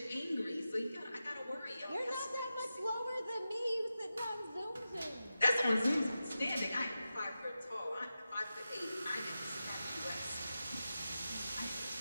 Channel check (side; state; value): both; inverted; correlation -0.92